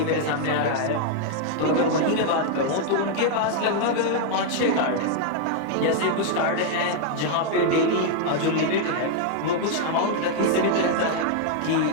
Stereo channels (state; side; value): different; both; correlation 0.00